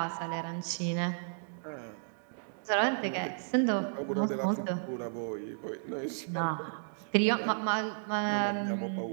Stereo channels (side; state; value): left; silent; digital silence